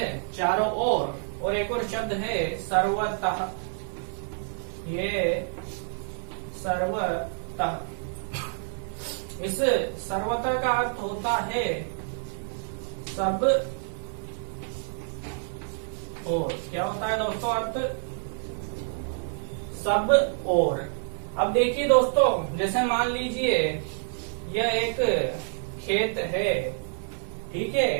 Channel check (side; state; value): left; silent; 59 dB below the other